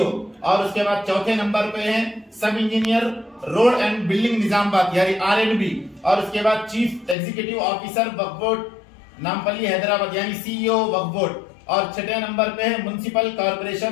और उसके बाद चौथे नंबर पे है सब engineer road and building Nizamabad यानी RNB, और उसके बाद चीफ एग्जीक्यूटिव ऑफिसर वक्फ बोर्ड नामपल्ली हैदराबाद यानी CEO वक्फ बोर्ड, और 6ठे नंबर पे है municipal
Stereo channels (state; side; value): drops out; right; at 7.2 s